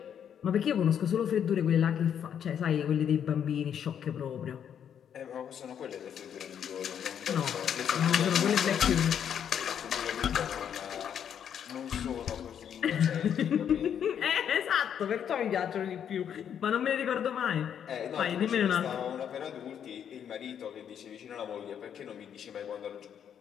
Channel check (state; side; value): quieter; right; 8.7 dB